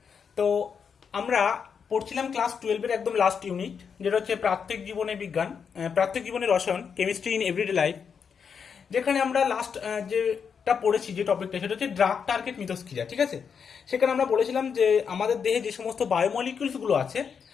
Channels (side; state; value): right; quieter; 6.6 dB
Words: তো আমরা পড়ছিলাম ক্লাস 12-এর একদম লাস্ট ইউনিট, যেটা হচ্ছে প্রাত্যহিক জীবনে বিজ্ঞান, প্রাত্যহিক জীবনের রসায়ন, কেমিস্ট্রি ইন এভরিডে লাইফ। যেখানে আমরা লাস্ট যেটা পড়েছি, যে টপিকটা, সেটা হচ্ছে ড্রাগ টার্গেট মিথস্ক্রিয়া। ঠিক আছে, সেখানে আমরা বলেছিলাম যে আমাদের দেহে যে সমস্ত বায়োমলিকিউলসগুলো আছে,